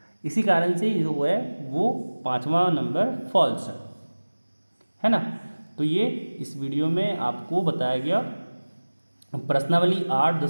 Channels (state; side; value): inverted; both; correlation -1.00